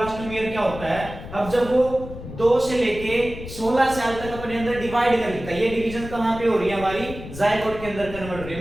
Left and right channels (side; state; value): left; noise; rumble, 12 dB below the sound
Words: क्या होता है, अब जब वो 2 से लेके 16 साल तक अपने अंदर डिवाइड कर लेता है, ये डिवीजन कहां पे हो रही है, हमारी जाइगोट के अंदर कन्वर्ट हो रही